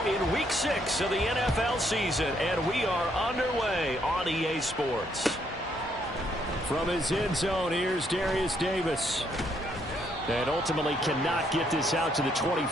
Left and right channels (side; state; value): both; normal; correlation 0.72